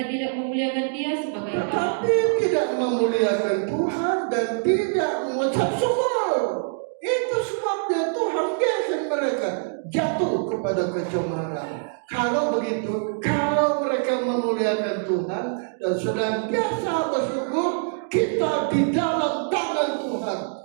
tidak memuliakan dia sebagai Allah. tetapi tidak memuliakan Tuhan dan tidak mengucap syukur. Itu sebabnya Tuhan biarkan mereka jatuh kepada kecemaran. Kalau begitu, kalau mereka memuliakan Tuhan dan senantiasa bersyukur, kita di dalam tangan Tuhan,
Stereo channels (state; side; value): silent; left; digital silence